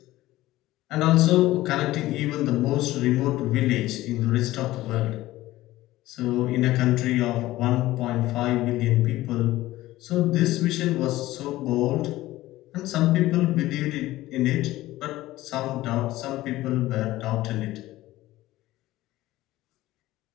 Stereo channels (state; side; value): quieter; right; 16.7 dB